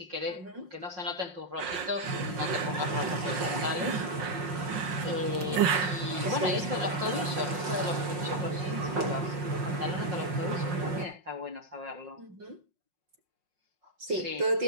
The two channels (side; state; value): left; late; 5.5 ms